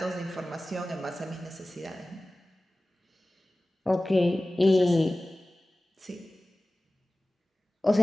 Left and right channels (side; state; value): both; normal; correlation 0.97